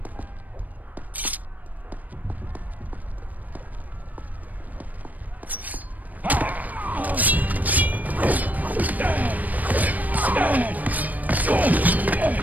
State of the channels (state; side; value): late; left; 0.079 ms